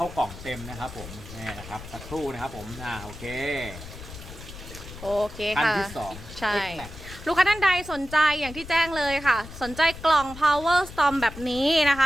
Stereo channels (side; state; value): left; noise; rumble, 14 dB below the sound